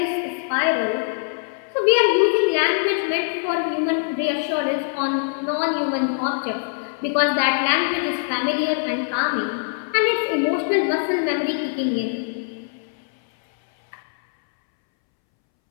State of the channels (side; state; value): right; silent; 64 dB below the other